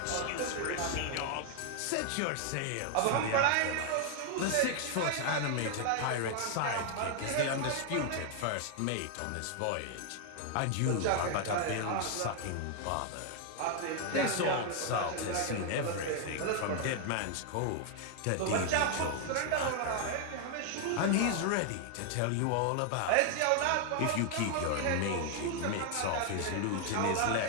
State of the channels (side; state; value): both; different; correlation 0.00